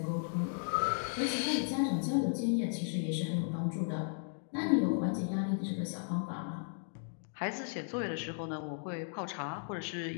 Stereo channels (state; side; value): silent; right; digital silence